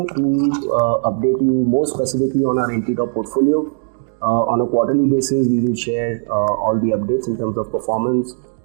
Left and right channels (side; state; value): left; silent; 67 dB below the other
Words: to update you more specifically on our NTDOP portfolio. On a quarterly basis, we will share all the updates in terms of performance,